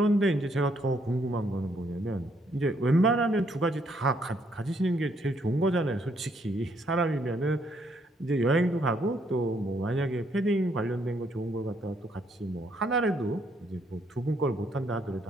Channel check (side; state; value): both; normal; correlation 0.71